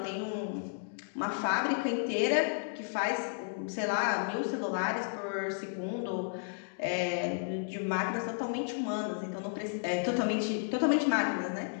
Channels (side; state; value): right; silent; digital silence